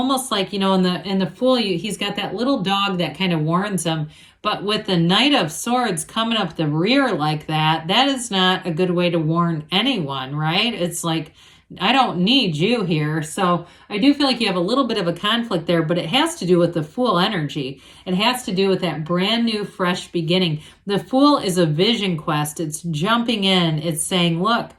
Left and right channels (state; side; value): identical; both; correlation 1.00